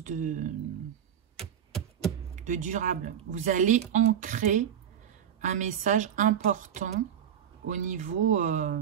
de durable. Vous allez ancrer un message important au niveau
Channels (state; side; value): quieter; left; 9.1 dB